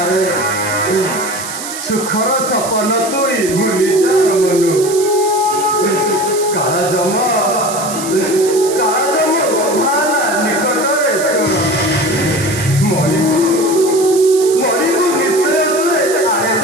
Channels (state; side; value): noise; right; hiss, 9 dB below the sound